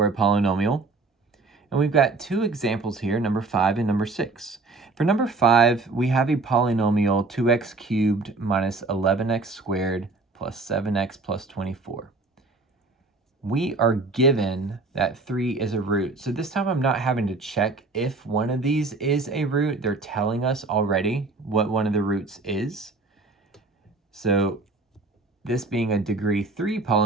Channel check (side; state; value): left; quieter; 3.6 dB